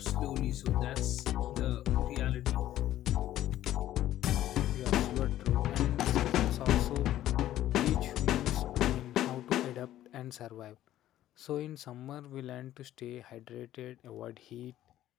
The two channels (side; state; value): right; quieter; 13.2 dB